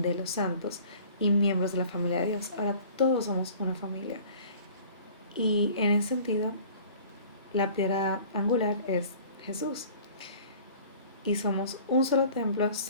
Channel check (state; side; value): inverted; both; correlation -0.48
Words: los santos y miembros de la familia de Dios. Ahora todos somos una familia. Y en ese sentido, la piedra angular es Jesús. Y somos un solo templo